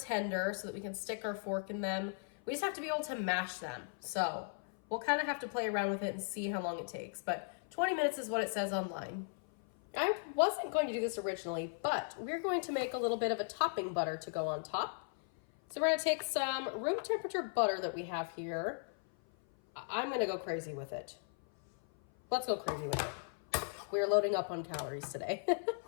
so that we can stick our fork in them. We just have to be able to mash them. So we'll kind of have to play around with it and see how long it takes, but 20 minutes is what it says online. I wasn't going to do this originally, but we're going to make a little bit of a topping butter to go on top. So we're gonna take some room temperature butter that we have here. I'm gonna go crazy with it. Let's go crazy with it. We're loading up on calories today.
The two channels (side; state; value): right; silent; 53 dB below the other